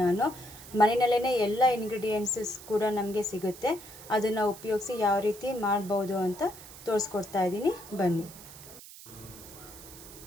ನಾನು ಮನೆಯಲ್ಲೇ ಎಲ್ಲ ಇಂಗ್ರೀಡಿಯೆಂಟ್ಸಸ್ ಕೂಡ ನಮಗೆ ಸಿಗುತ್ತೆ, ಅದನ್ನು ಉಪಯೋಗಿಸಿ ಯಾವ ರೀತಿ ಮಾಡ್ಬೋದು ಅಂತ ತೋರಿಸ್ಕೊಡ್ತಾ ಇದ್ದೀನಿ. ಬನ್ನಿ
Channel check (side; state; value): right; noise; hiss, 17 dB below the sound